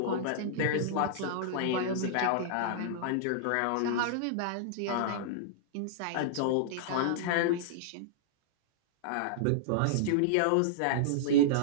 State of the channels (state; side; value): different; both; correlation -0.02